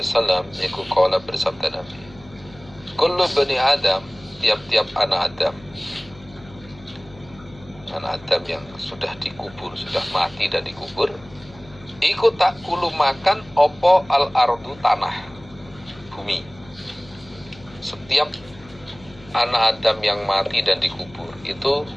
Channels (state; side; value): noise; left; hum, 22 dB below the sound